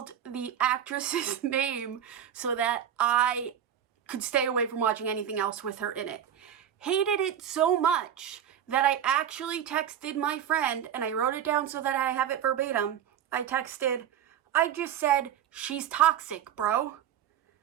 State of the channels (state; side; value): quieter; left; 9.7 dB